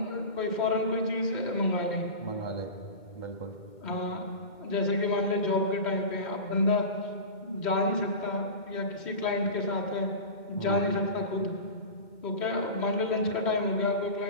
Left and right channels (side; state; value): right; late; 2.1 ms